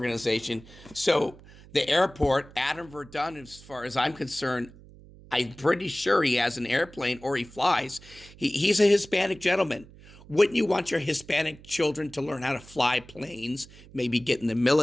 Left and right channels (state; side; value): noise; right; hum, 21 dB below the sound